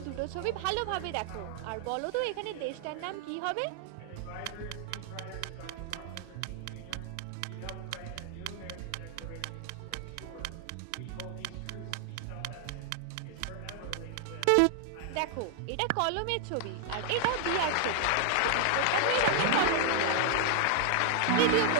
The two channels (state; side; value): different; both; correlation 0.00